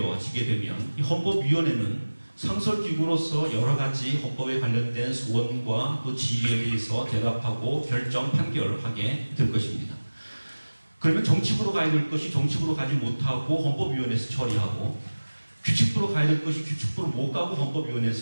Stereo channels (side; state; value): both; inverted; correlation -1.00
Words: 되면 이 헌법위원회는 상설기구로서 여러 가지 헌법에 관련된 소원과 또 질의에 대해서 대답하고 결정, 판결하게 될 것입니다. 그러면 정치부로 가야 될 것이 정치부로 가지 못하고 헌법위원회에서 처리하고 규칙부로 가야 될 것이 규칙부로 못 가고